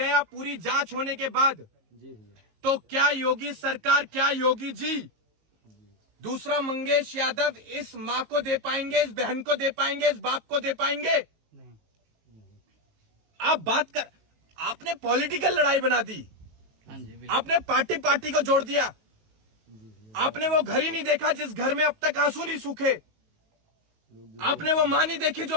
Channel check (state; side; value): late; left; 19 ms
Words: पूरी जांच होने के बाद, तो क्या योगी सरकार, क्या योगी जी दूसरा मंगेश यादव इस मां को दे पाएंगे, इस बहन को दे पाएंगे, इस बाप को दे पाएंगे? आप बात कर, आपने पॉलिटिकल लड़ाई बना दी, आपने पार्टी को जोड़ दिया। आपने वो घर ही नहीं देखा जिस घर में अब तक आंसू नहीं सूखे। आपने वो मां नहीं देखी जो